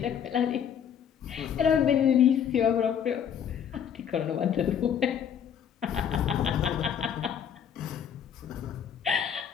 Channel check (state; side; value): quieter; right; 8.5 dB